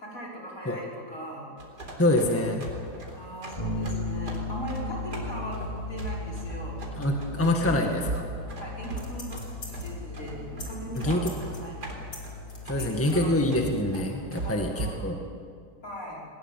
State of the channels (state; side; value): normal; both; correlation 0.22